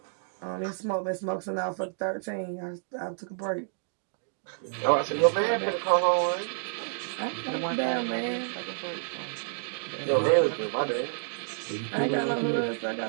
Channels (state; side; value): silent; left; digital silence